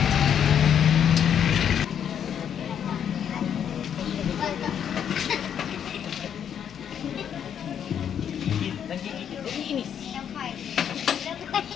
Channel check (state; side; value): quieter; right; 8.7 dB